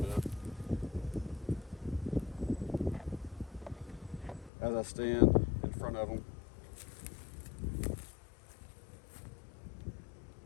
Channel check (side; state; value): right; drops out; at 4.5 s